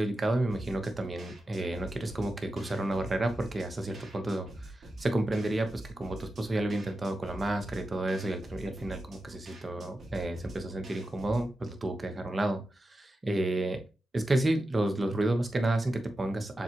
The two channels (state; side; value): normal; both; correlation 0.91